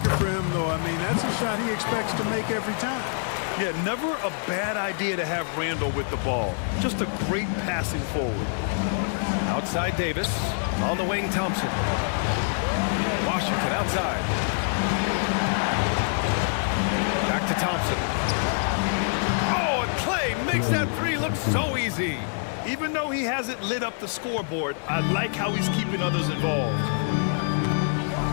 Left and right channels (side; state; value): right; silent; digital silence